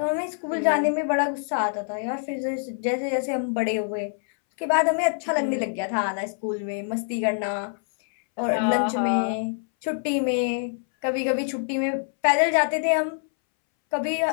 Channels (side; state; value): right; silent; 62 dB below the other